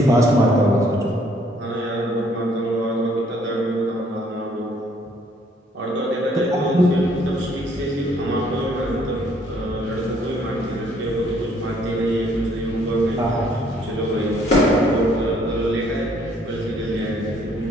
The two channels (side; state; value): both; normal; correlation 0.64